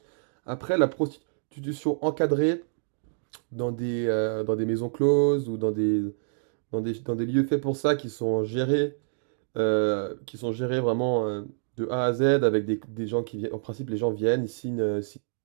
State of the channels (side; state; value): left; silent; digital silence